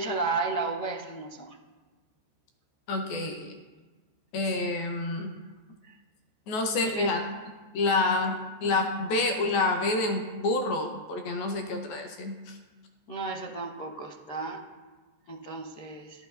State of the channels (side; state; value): right; late; 14 ms